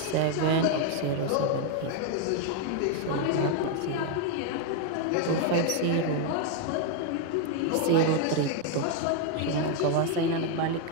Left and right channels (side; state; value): both; different; correlation 0.01